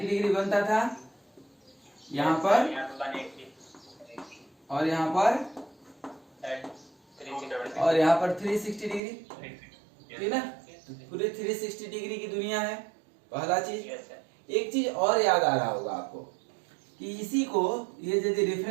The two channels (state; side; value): drops out; left; at 9.0 s